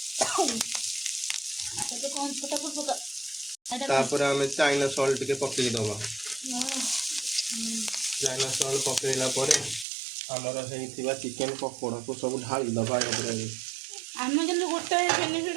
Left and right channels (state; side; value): drops out; left; at 9.9 s